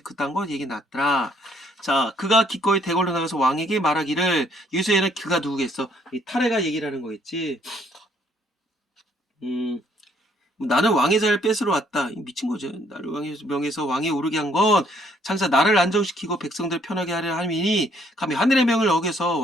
그딴 거 얘기 났더라. 자, 그가 기꺼이 대궐로 나가서 왕에게 말하기를 여기서에는 그가 누구겠어? 이 타레가 얘기를 하는 거겠지. 나는 왕의 자리를 뺏으러 왔다. 미친 거죠. 나를 왕의 명에서 왕에 오르게 한 건 장사 나를 안정시키고 백성들 편하게 하려 함이니 감히 하늘의 명을 어겨서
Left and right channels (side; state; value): both; normal; correlation 0.66